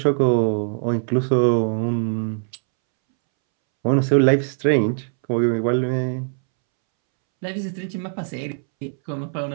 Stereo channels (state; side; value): silent; left; 65 dB below the other